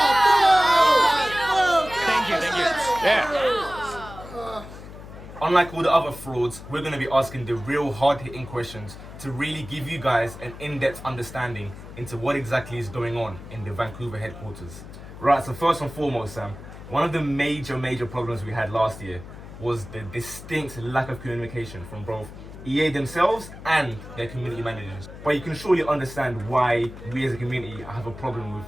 Yeah. Unlike all the other frauds, we're going to be asking the real hard-hitting questions to really give you guys an in-depth understanding into what exactly is going on in the Vancouver headquarters. Right, so first and foremost, Sam, one of the major problems we had last year was the distinct lack of communication from both EA themselves and their community managers. But you can surely understand why we as a community have a problem with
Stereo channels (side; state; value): left; noise; hum, 14 dB below the sound